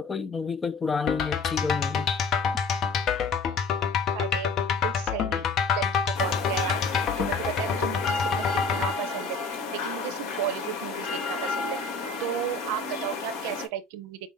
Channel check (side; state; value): right; quieter; 3.6 dB